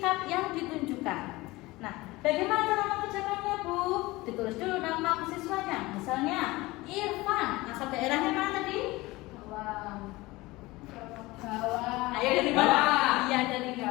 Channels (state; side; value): quieter; right; 20.6 dB